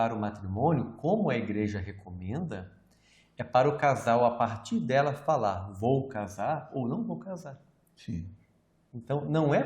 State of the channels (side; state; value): both; identical; correlation 1.00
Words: o matrimônio, como a igreja recomenda, é para o casal, a partir dela, falar: vou casar ou não vou casar. Sim. Então, não é